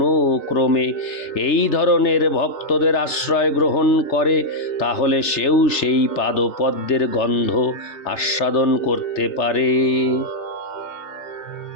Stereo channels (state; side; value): late; right; 3.3 ms